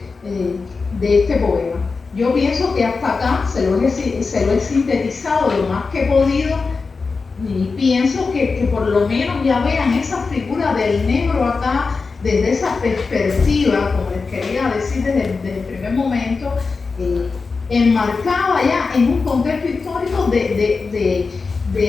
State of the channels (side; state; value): right; quieter; 4.4 dB